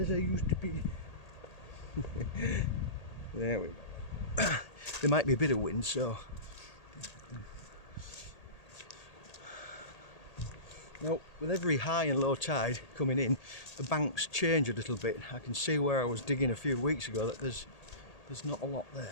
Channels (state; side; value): late; right; 1.8 ms